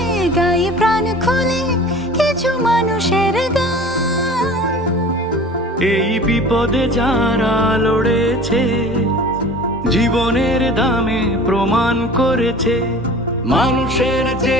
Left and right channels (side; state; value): both; normal; correlation 0.42